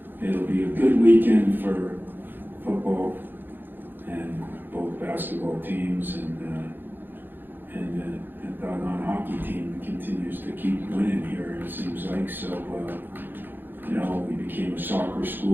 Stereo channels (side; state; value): left; late; 0.095 ms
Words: it'll be a good weekend for football and both basketball teams, and doggone hockey team continues to keep winning here, it seems like. So, we became a soccer